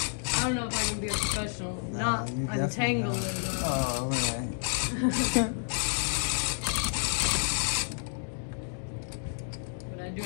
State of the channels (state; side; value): silent; right; 58 dB below the other